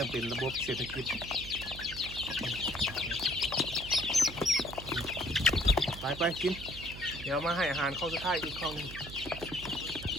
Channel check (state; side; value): noise; right; hum, 12 dB below the sound